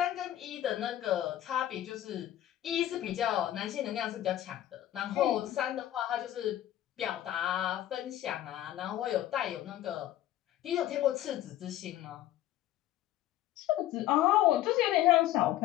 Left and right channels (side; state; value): right; quieter; 13.2 dB